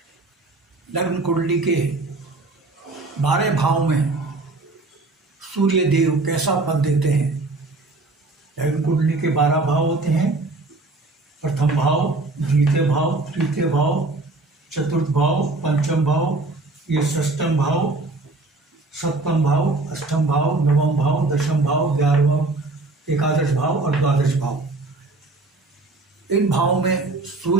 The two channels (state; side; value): quieter; left; 3.2 dB